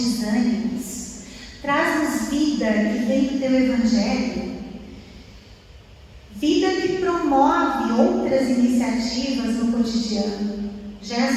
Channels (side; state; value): both; identical; correlation 1.00